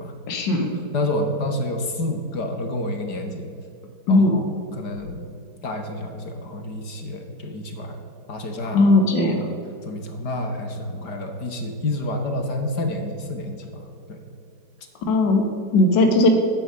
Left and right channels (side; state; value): right; late; 5.0 ms